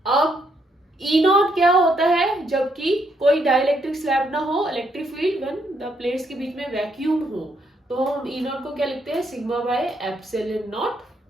अब ई नॉट क्या होता है, जबकि कोई डाइलेक्ट्रिक स्लैब ना हो, electric field when the plates के बीच में वैक्यूम हो, तो हम ई नॉट को क्या लिखते हैं, सिग्मा बाय एप्सिलॉन नॉट,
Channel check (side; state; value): both; normal; correlation 0.74